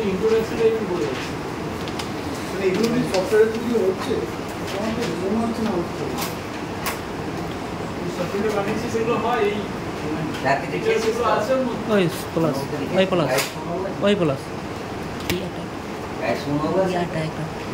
ইন্ট্রোডাকশনটা একটু বলে দিচ্ছি। মানে এগুলো কি সফটওয়্যারের থ্রু দিয়ে হচ্ছে আমার তো মনে হচ্ছে না হচ্ছে সফটওয়্যার বানিয়েছি সেগুলো হয় এই সার্টিফিকেট যেগুলো আছে ওর মধ্যে। ওই প্লাস ওই প্লাস ওই প্লাস গাইড শুনো বলে ইয়াটা একটা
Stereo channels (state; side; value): identical; both; correlation 1.00